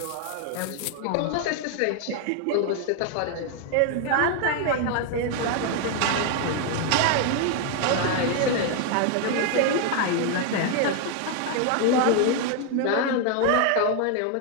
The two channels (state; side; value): different; both; correlation 0.01